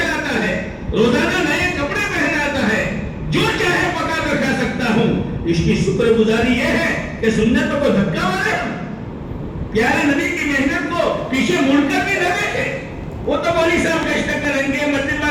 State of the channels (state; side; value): identical; both; correlation 1.00